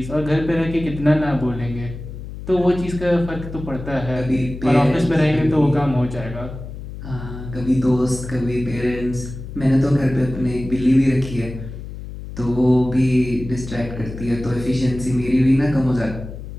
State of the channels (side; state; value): left; noise; hum, 11 dB below the sound